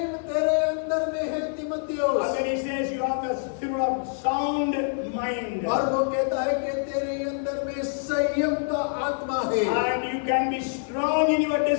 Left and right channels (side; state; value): right; silent; 61 dB below the other